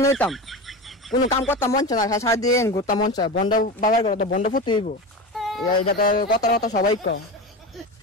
নিতাম কোনো কাম করতাম মন চায় না সারাদিন ঘুরতাম মন চায় বন্ড বাবার ঘরে তো বন্ড ফুটে হইব যাতে কথা কথা সবাই কয়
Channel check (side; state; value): both; normal; correlation 0.25